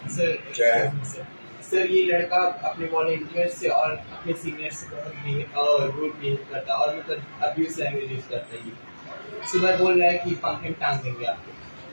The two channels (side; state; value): both; inverted; correlation -1.00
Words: सर क्या है? सर ये लड़का अपने वॉलंटियर से और अपने सीनियर से बहुत रूड बिहेव करता है और मतलब अब्यूज लैंग्वेज यूज करता है। ये सुबह बोल रहा है कि पंखे में टांग देंगे आपको,